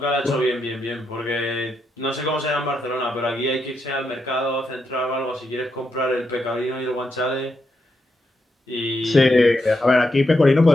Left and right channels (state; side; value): normal; both; correlation 0.82